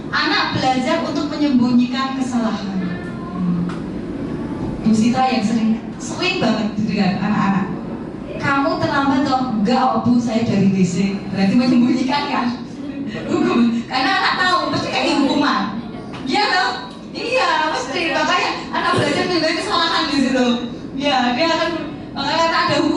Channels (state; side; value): identical; both; correlation 1.00